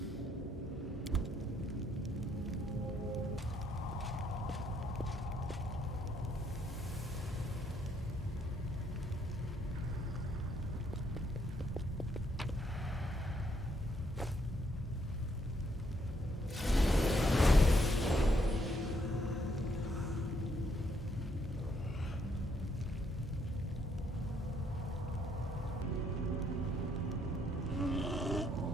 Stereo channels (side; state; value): both; normal; correlation 0.72